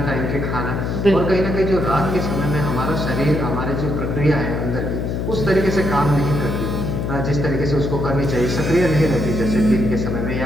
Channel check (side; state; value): left; noise; hum, 2 dB below the sound